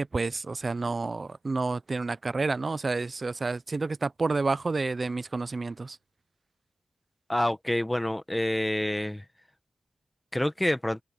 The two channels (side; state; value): both; normal; correlation 0.97